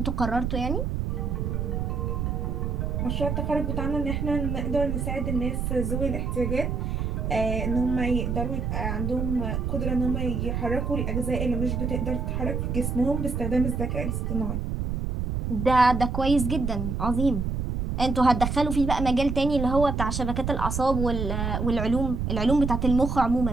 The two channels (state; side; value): noise; right; rumble, 1 dB below the sound